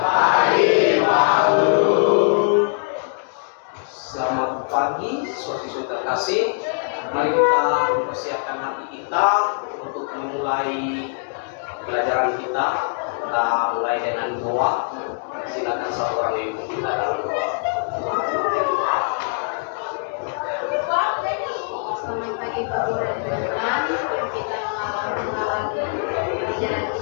Pak Guru. Selamat pagi siswa-siswi terkasih. Mari kita mempersiapkan hati kita untuk memulai pelajaran kita. Kita mulai dengan doa. Silakan satu orang yang ikut kita dalam doa. Selamat pagi Pak Guru dan teman-teman. Kita mengawali pelajaran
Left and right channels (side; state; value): right; silent; digital silence